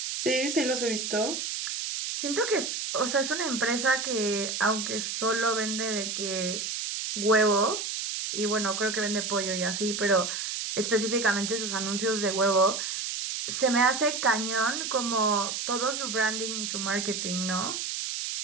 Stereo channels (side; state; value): right; noise; hiss, 3 dB below the sound